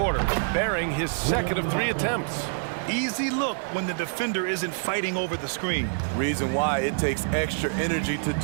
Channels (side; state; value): left; silent; 55 dB below the other